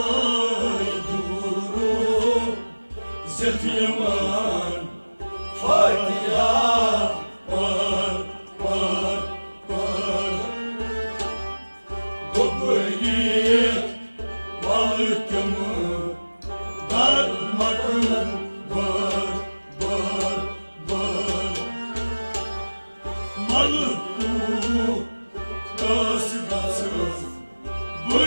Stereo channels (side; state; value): both; inverted; correlation -1.00